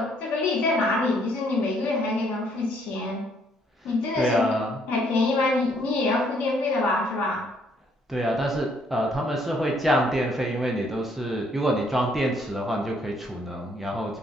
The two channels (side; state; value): both; normal; correlation 0.67